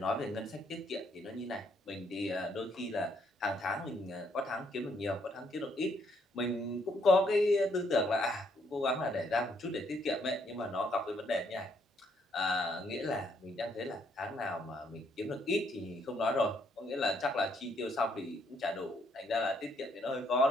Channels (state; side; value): normal; both; correlation 0.70